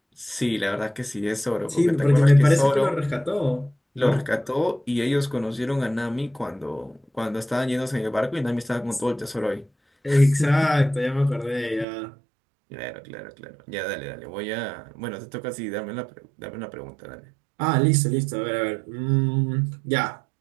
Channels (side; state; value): left; drops out; at 11.9 s